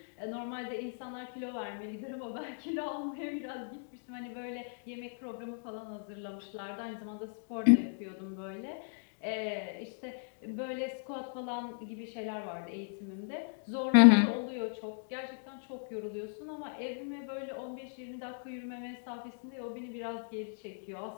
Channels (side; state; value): right; silent; digital silence